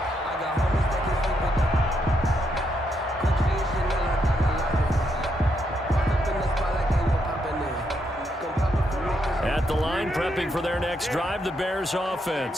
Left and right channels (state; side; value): normal; both; correlation 0.78